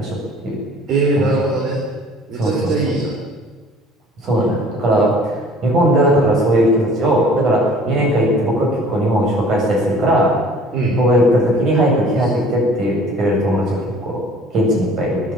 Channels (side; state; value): both; normal; correlation 0.50